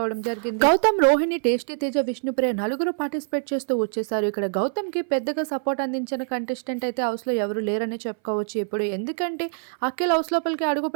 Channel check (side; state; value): left; silent; 59 dB below the other